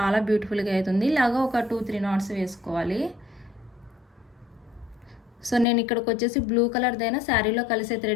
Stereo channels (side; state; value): right; drops out; at 5.7 s